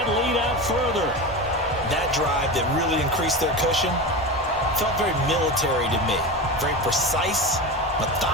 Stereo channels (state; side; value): normal; both; correlation 0.24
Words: lead out further. That drive that really increased their cushion felt very military to me. Very precise,